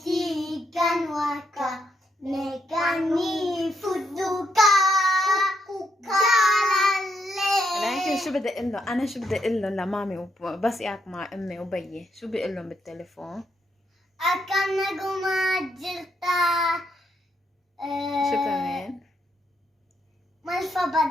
كان وكا ميكاني فدوكا جلالي. لكن شو بدي اقول له انا؟ شو بدي اقول له لمامي بس قاعد مع امي وبيي؟ شو بقول لهم بالتليفون؟ أكن نجوم جلتا شو كمان؟ مالفا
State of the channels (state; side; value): normal; both; correlation 0.78